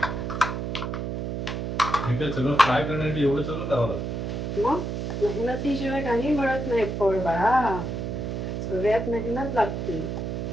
ठीक आहे. सगळं फ्राय करण्यासाठी एवढं सगळं करावं लागतं. मग मेहनतीशिवाय काही मिळत नाही फळ बाळा. सगळ्यात मेहनत लागते.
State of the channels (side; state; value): right; noise; hum, 3 dB below the sound